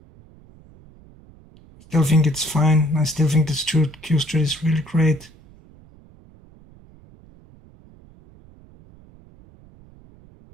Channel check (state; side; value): noise; right; rumble, 25 dB below the sound